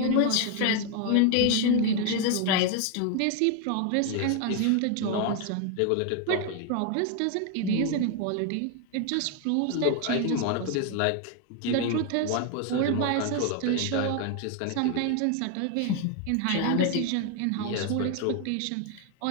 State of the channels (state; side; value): different; both; correlation 0.01